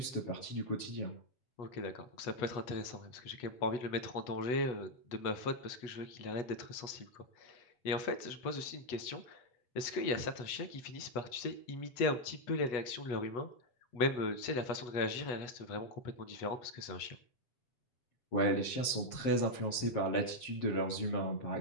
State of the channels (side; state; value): right; late; 8.2 ms